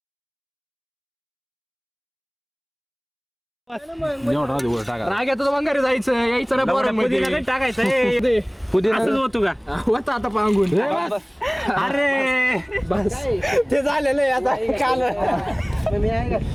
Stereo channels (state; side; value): identical; both; correlation 1.00